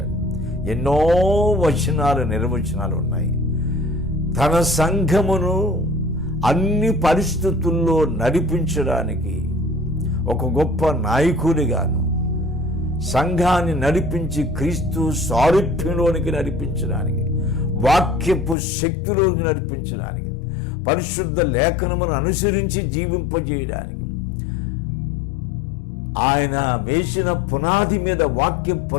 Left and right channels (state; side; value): drops out; right; at 18.6 s